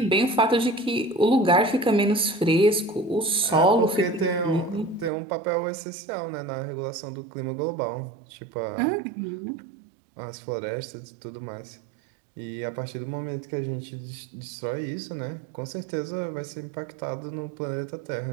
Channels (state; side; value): drops out; left; at 5.1 s